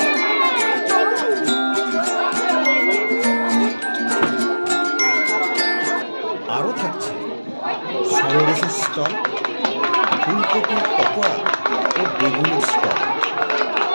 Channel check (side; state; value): both; inverted; correlation -1.00